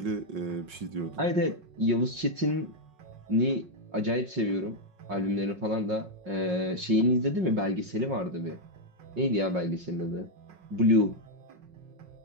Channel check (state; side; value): late; left; 5.5 ms